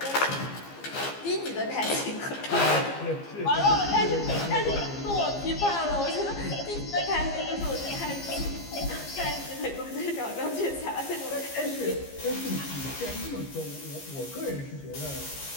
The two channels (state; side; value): late; right; 15 ms